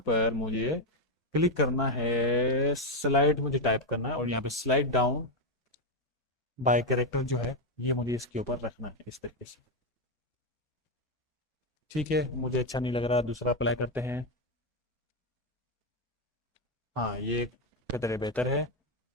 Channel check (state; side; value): normal; both; correlation 0.05